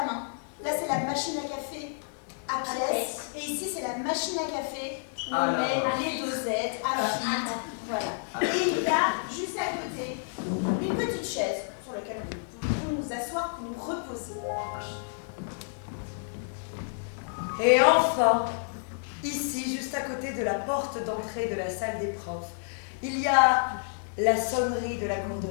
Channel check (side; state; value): right; silent; digital silence